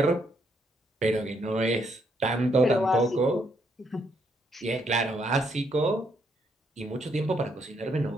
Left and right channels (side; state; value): both; normal; correlation 0.73